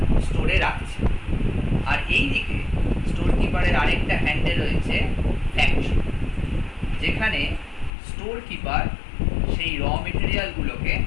স্টোরে রাখছে। আর এই দিকে স্টোর কিপারের আরেকটা হ্যান্ডে রয়েছে ফ্যাক্টরি, যেখানে স্টোর কিপার সেই র মেটেরিয়ালগুলোকে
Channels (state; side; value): drops out; right; at 7.9 s